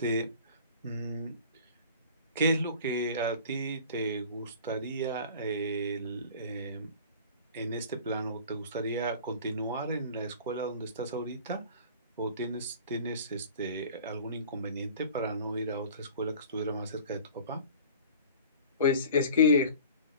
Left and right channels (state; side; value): inverted; both; correlation -0.44